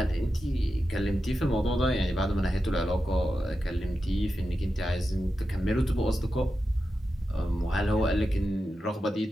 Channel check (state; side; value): normal; both; correlation 0.90